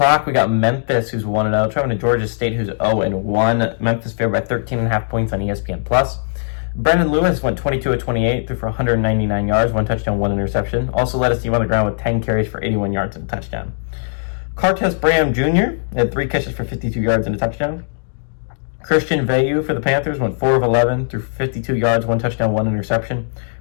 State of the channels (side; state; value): right; silent; digital silence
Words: we got Memphis, who's 1-0, traveling to Georgia State, who's 0-1. Memphis favored by 13.5 points on ESPN+. Brendan Lewis went 22 of 28, threw for 199 yards, 1 touchdown, 1 interception. Also led his team on the ground with 10 carries for 81 yards and a touchdown. Cartes Bram Jr. had 3 catches for 52 yards and a touchdown. Christian Veilleux for the Panthers went 4 of 11, threw for 52 yards, 1 touchdown, 1 interception.